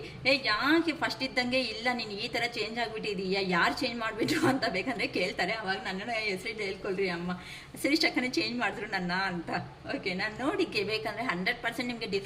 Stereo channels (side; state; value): both; identical; correlation 1.00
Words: ಯಾಕೆ ಫಸ್ಟ್ ಇದ್ದಂಗೆ ಇಲ್ಲ, ನೀನು ಈ ಥರ ಚೇಂಜ್ ಆಗಿಬಿಟ್ಟಿದೀಯಾ, ಯಾರು ಚೇಂಜ್ ಮಾಡಿಬಿಟ್ರು ಅಂತ ಬೇಕಂದರೆ ಕೇಳ್ತಾರೆ. ಅವಾಗ ನನ್ನನ್ನು ಹೆಸರು ಹೇಳ್ಕೊಳ್ರಿ, ಅಮ್ಮ ಶಿರೀಷಕ್ಕನೇ ಚೇಂಜ್ ಮಾಡಿದ್ರು ನನ್ನ ಅಂತ. ಓಕೆ, ನಾನು ನೋಡಿಕೆ ಬೇಕಂದರೆ 100% ನಿಮಗೆ